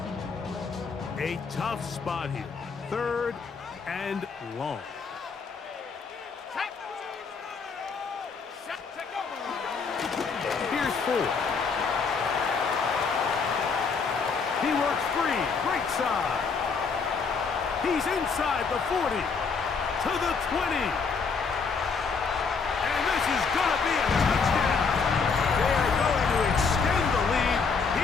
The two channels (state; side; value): quieter; right; 5.2 dB